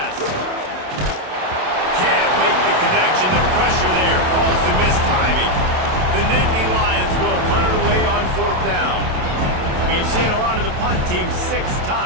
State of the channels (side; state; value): left; late; 27 ms